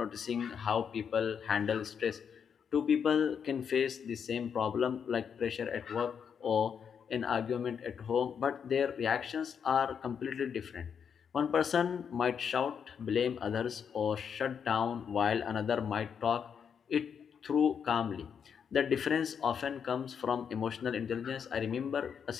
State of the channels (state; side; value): quieter; right; 7.2 dB